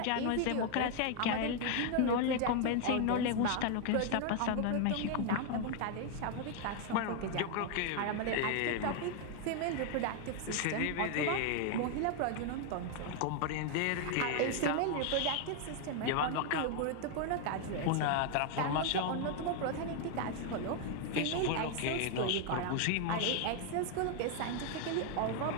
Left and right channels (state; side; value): different; both; correlation 0.00